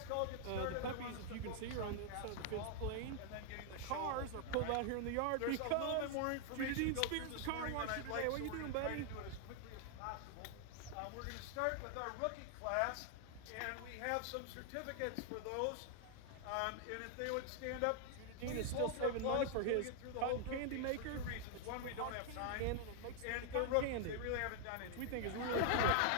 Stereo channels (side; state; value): both; different; correlation 0.00